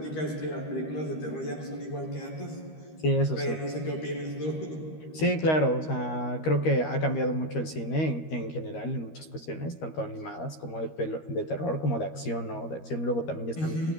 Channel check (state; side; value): late; right; 13 ms